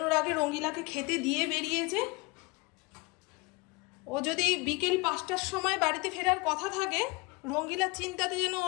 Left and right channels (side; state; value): right; quieter; 25.3 dB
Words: আগে রঙ্গিলাকে খেতে দিয়ে বেরিয়েছে। ও যদি বিকেল 5টার সময় বাড়িতে ফেরার কথা থাকে, রঙ্গিলার চিন্তাতে যেন